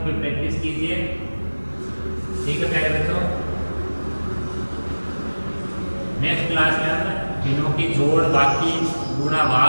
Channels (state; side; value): inverted; both; correlation -1.00